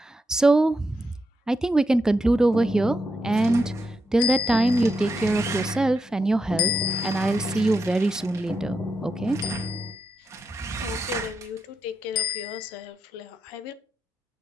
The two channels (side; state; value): both; normal; correlation 0.84